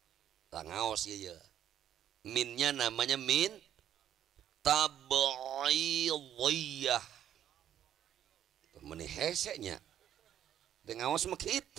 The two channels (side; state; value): left; quieter; 10.4 dB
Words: Tangaos ieu. Minnya namanya min tab'idiyah. Meni hesenya. Dengawas mah